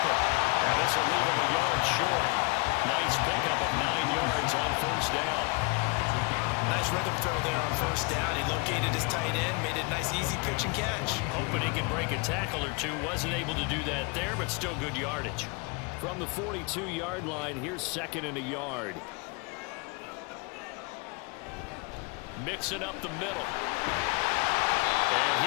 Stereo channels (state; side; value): quieter; right; 30.1 dB